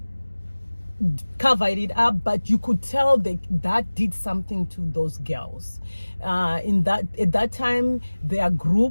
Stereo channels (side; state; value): both; inverted; correlation -1.00